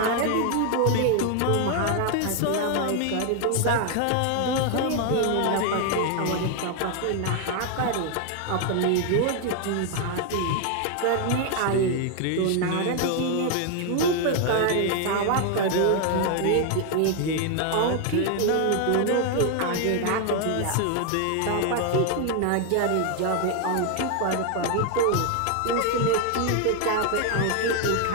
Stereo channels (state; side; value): different; both; correlation 0.01